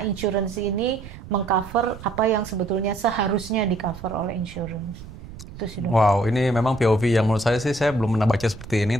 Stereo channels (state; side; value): noise; right; rumble, 15 dB below the sound